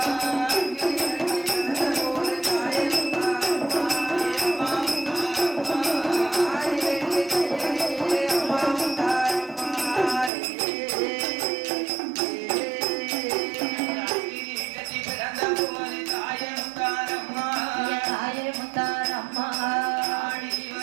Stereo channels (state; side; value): drops out; left; at 10.3 s